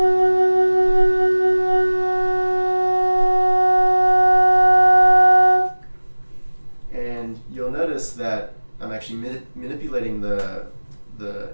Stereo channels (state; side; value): inverted; both; correlation -1.00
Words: And you'll notice that I'm actually manipulating the